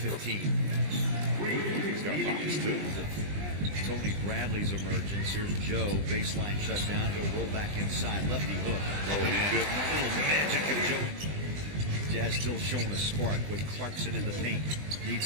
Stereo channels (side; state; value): left; late; 20 ms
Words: He's got buckets too. Tony Bradley's emergence. Here's Joe, baseline shut down, go roll back inside, lefty hook. Oh, he did. Little magic of Joe. Jazz still showing a spark with Clarkson in the paint.